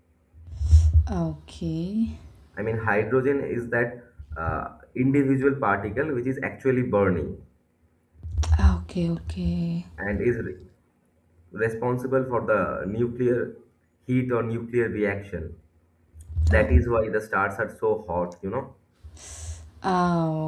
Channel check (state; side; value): identical; both; correlation 1.00